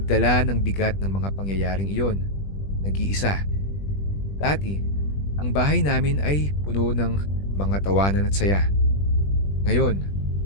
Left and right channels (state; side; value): late; right; 20 ms